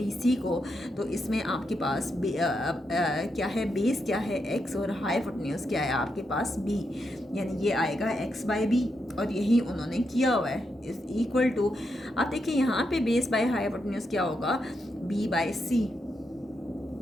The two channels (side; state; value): both; normal; correlation 0.83